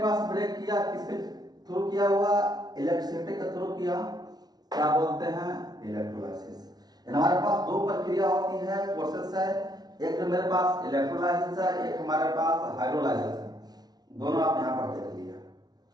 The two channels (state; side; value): late; left; 0.19 ms